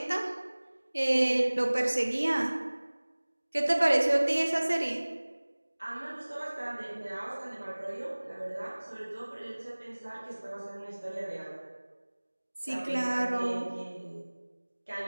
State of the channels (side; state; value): both; inverted; correlation -1.00